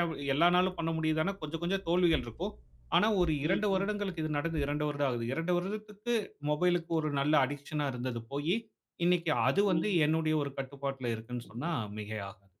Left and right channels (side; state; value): both; identical; correlation 1.00